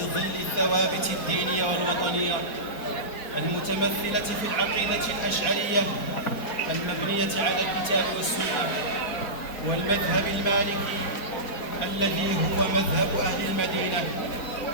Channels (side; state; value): right; late; 4.4 ms